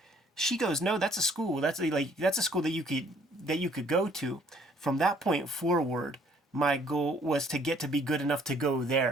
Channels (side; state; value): both; normal; correlation 0.61